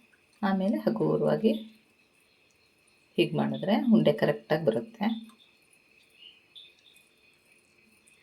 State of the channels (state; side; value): identical; both; correlation 1.00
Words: ಆಮೇಲೆ ಹಗುರವಾಗಿ ಹೀಗೆ ಮಾಡಿದ್ರೆ ಉಂಡೆ ಕರೆಕ್ಟಾಗಿ ಬರುತ್ತೆ.